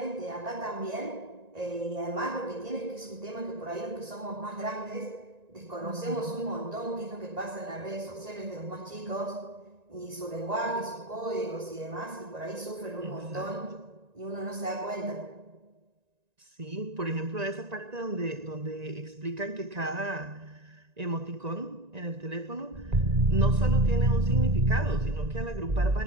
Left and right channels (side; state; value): left; late; 1.9 ms